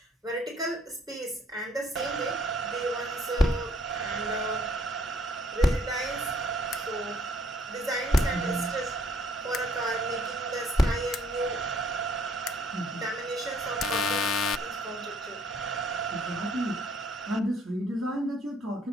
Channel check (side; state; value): both; normal; correlation 0.64